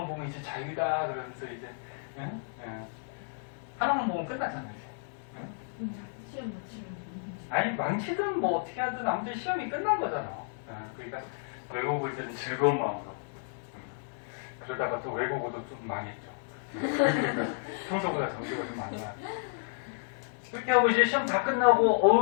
보면 이제 자유다 그러면서 이제 하나만 보면 끝나잖아요. 이제. 시험 못 치면. 아니 망치든 뭐 어떻게 하든 아무튼 시험이 끝난 거잖아. 그러니까 외국어 볼 때는 즐거운 마음으로. 그러다가 또 외국어도 좀 망했죠. 평소보다 점수가 좀 많이 나요. 그렇게 하고 이제 시험 다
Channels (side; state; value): right; silent; 57 dB below the other